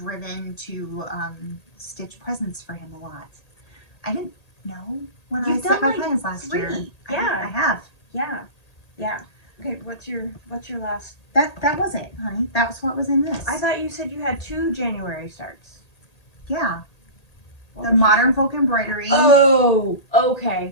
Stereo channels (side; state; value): right; late; 1.8 ms